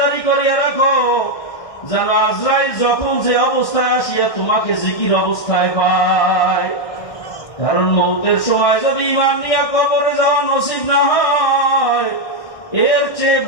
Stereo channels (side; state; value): right; late; 1.6 ms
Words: করিয়া রাখো, যেন আজরাইল যখন যে অবস্থায় আসিয়া তোমাকে জিকির অবস্থায় পায়। কারণ মউতের সময় যদি ঈমান নিয়ে কবরে যাওয়া নসিব না হয়, এর চেয়ে